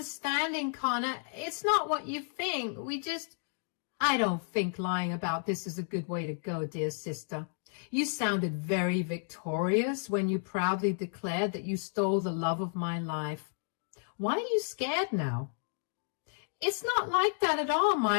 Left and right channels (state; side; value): silent; right; digital silence